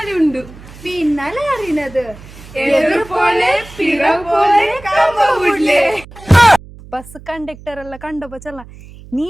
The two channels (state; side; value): noise; right; hum, 19 dB below the sound